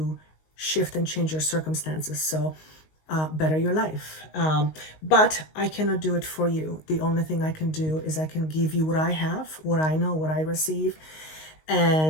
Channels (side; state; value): right; late; 19 ms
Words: shift and change your circumstances. So better your life. But I cannot do it for you. The only thing I can do is I can give you what I have, what I know, what I receive,